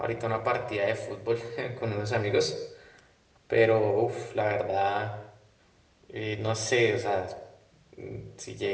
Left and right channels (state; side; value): identical; both; correlation 1.00